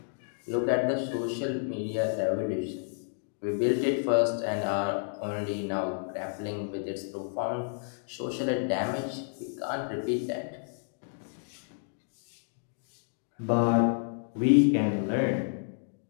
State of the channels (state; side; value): silent; right; digital silence